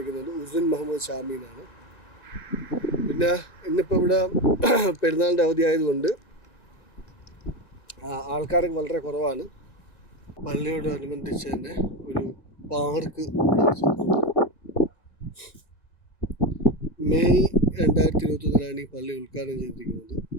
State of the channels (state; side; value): late; right; 1.9 ms